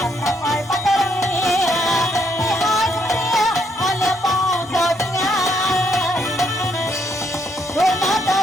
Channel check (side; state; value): both; normal; correlation 0.72